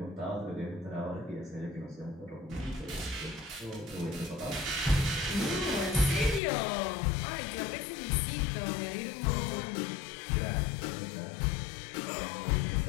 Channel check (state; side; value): drops out; right; at 6.4 s